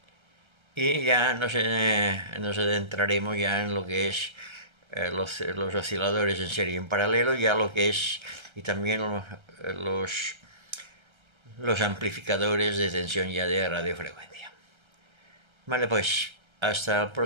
y ya nos adentraremos ya en lo que es los osciladores en serie y en paralelo, ya lo que es, y también los amplificadores de tensión ya de radiofrecuencia. Vale, pues hasta el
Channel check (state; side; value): late; left; 1.3 ms